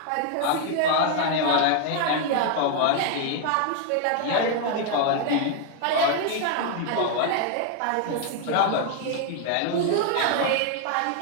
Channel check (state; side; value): different; both; correlation 0.00